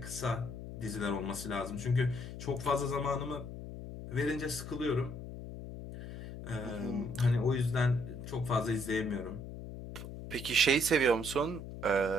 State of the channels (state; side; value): noise; left; hum, 10 dB below the sound